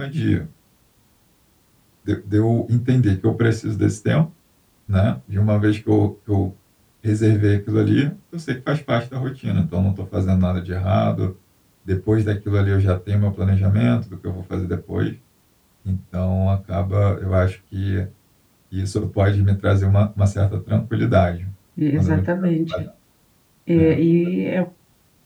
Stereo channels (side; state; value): both; identical; correlation 1.00